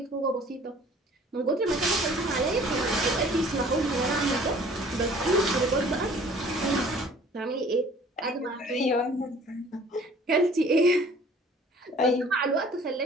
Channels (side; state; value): both; normal; correlation 0.52